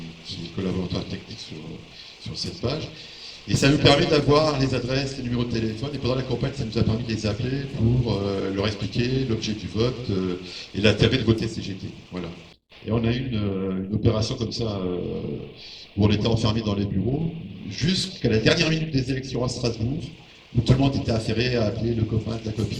est collaborateur technique sur cette page. Et ça nous permet d'avoir les adresses, les numéros de téléphone, et pendant la campagne, ça nous a permis de les appeler pour leur expliquer l'objet du vote et l'intérêt de voter CGT. Voilà. Et on a eu une opération comme ça, où on était enfermés dans les bureaux, jusqu'à la dernière minute des élections à Strasbourg, où tout le monde était affairé à appeler le copain de la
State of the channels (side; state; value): both; identical; correlation 1.00